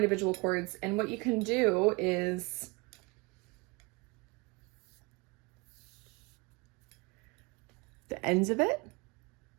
cords. And what you can do is the ends of it,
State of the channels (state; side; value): quieter; left; 27.2 dB